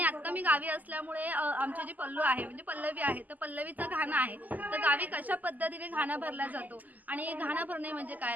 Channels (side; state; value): left; late; 0.081 ms